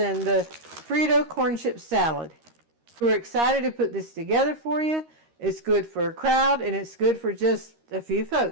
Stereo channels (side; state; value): left; late; 13 ms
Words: the Frito corn chip salad. We're excited to put this together for you. It's good for a crowd, and it's good for just a few